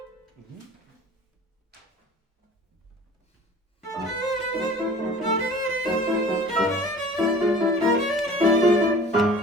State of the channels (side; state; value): both; normal; correlation 0.44